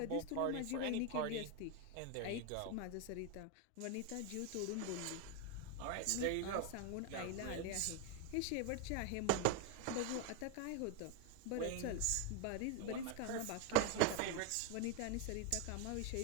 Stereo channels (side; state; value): both; different; correlation 0.01